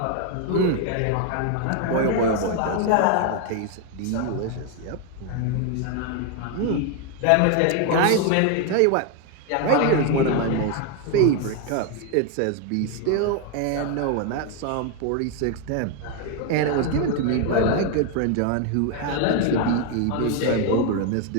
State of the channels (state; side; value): different; both; correlation 0.01